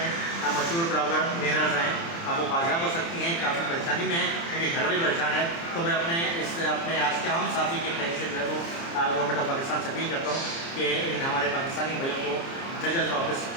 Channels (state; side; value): late; right; 30 ms